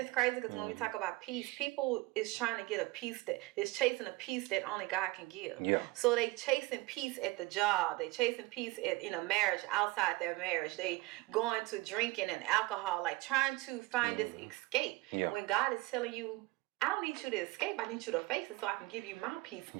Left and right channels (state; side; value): quieter; left; 21.1 dB